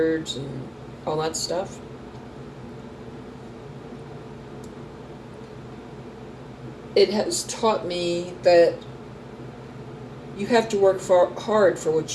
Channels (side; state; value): both; identical; correlation 1.00